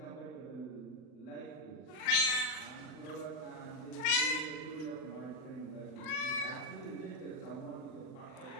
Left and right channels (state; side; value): late; right; 39 ms